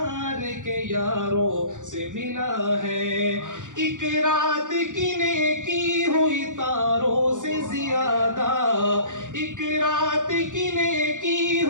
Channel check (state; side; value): late; left; 0.87 ms